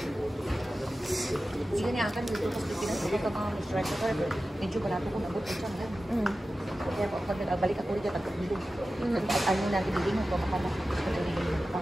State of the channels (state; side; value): normal; both; correlation 0.94